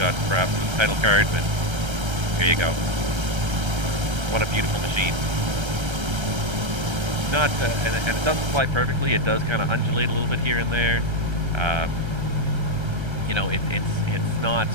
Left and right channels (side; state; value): left; late; 1.3 ms